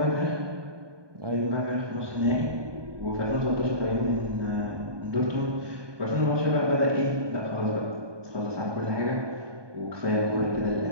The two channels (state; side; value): late; left; 1.2 ms